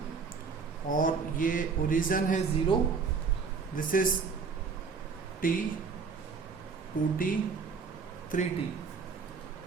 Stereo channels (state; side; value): quieter; left; 5.3 dB